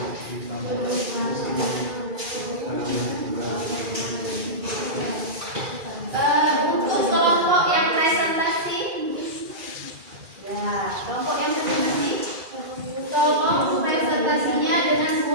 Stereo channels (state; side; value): late; left; 2.4 ms